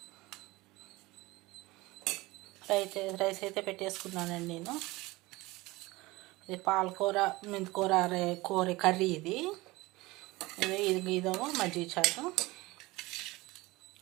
రైస్ అయితే పెట్టేసుకున్నానండి నేను. ఇది పాలకూర, మెంతికూర కూర కర్రీ. ఇదేమో మజ్జిగ చారు.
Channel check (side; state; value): left; quieter; 21.0 dB